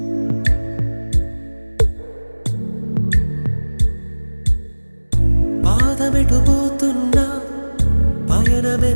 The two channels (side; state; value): both; inverted; correlation -1.00